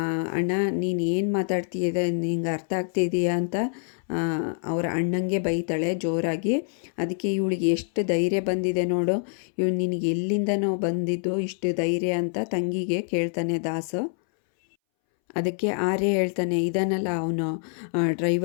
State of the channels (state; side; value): silent; right; 61 dB below the other